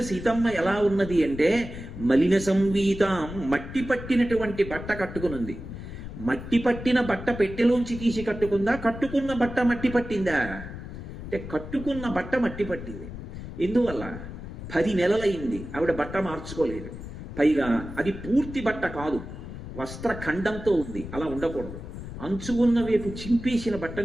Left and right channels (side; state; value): left; noise; rumble, 10 dB below the sound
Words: సీతమ్మ ఎలా ఉన్నది అంటే, మలిన సంవీతాం, మట్టి పట్టినటువంటి బట్ట కట్టుకునుంది. మట్టి పట్టిన బట్ట పెట్టెలోంచి తీసి కట్టుకుందా? కట్టుకున్న బట్ట మట్టి పట్టిందా? అంటే కట్టుకున్న బట్ట మట్టి పట్టింది. ఎందువల్ల? 10 నెలలైంది ఆవిడ బట్ట మార్చుకోలేదు. పైగా అది పూర్తి బట్ట కాదు, వస్త్రఖండంతో ఉంది. అలా ఉండకూడదు. అంచు ఉన్న వైపు చింపేసిన